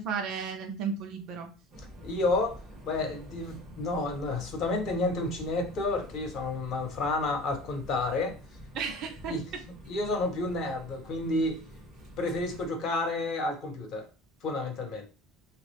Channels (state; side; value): normal; both; correlation 0.40